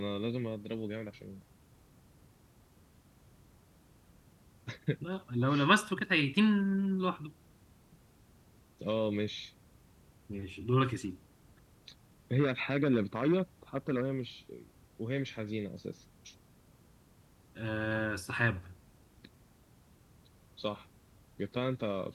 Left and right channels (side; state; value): both; identical; correlation 1.00